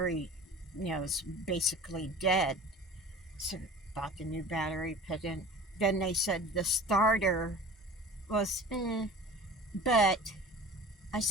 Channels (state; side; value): normal; both; correlation 0.40